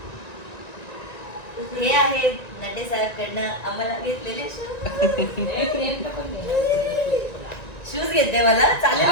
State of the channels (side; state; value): right; late; 1.9 ms